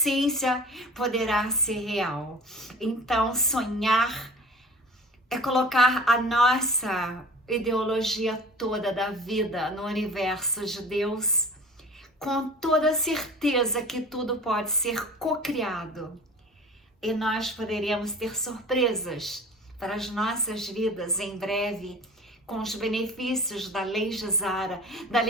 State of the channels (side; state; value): both; normal; correlation 0.41